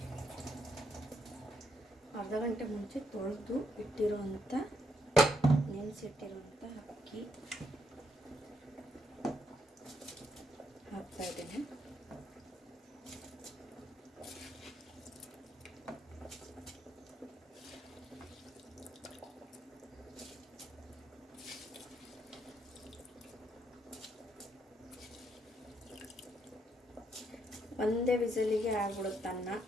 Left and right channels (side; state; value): both; normal; correlation 0.76